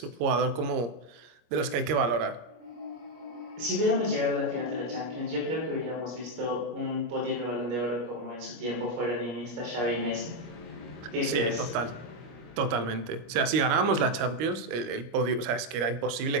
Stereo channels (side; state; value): left; late; 26 ms